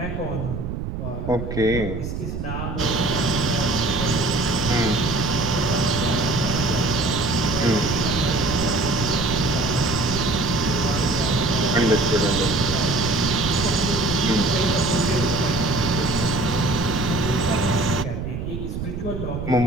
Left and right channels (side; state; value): right; noise; rumble, 5 dB below the sound